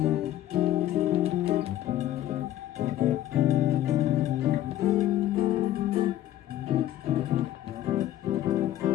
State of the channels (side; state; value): right; quieter; 12.9 dB